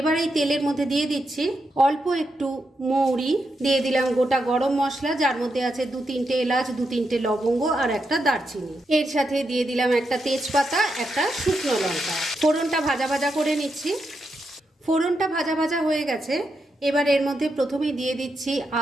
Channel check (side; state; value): both; normal; correlation 0.84